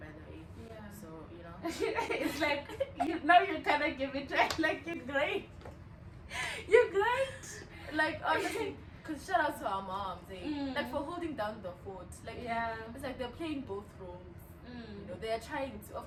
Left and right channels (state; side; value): identical; both; correlation 1.00